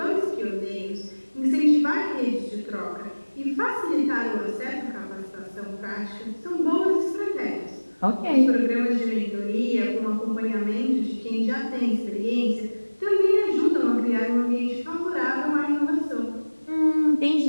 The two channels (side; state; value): both; inverted; correlation -1.00